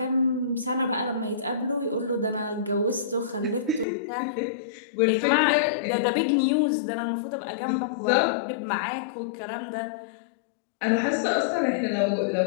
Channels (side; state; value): right; drops out; at 3.9 s